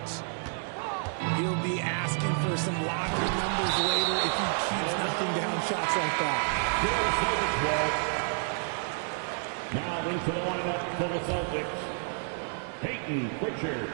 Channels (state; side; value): silent; left; 58 dB below the other